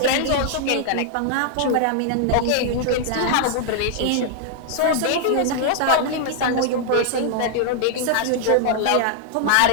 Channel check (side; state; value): both; different; correlation -0.01